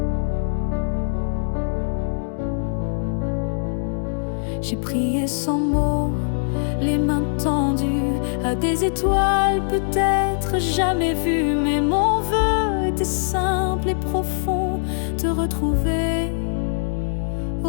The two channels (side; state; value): right; silent; digital silence